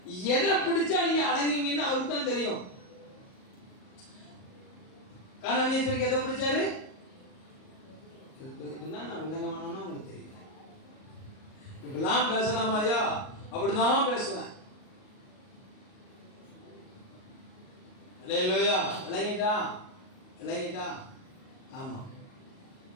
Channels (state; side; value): late; right; 38 ms